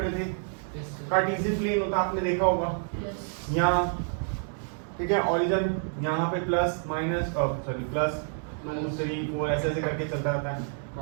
थे। कार्टेशियन प्लेन होता आपने देखा होगा, यहाँ ठीक है, ओरिजिन यहाँ पे प्लस माइनस सॉरी प्लस 2 3 4 ऐसे ऐसे करके चलता रहता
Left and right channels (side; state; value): left; silent; 57 dB below the other